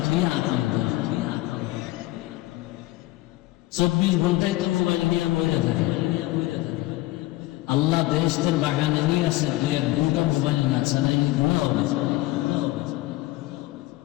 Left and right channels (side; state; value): right; quieter; 18.1 dB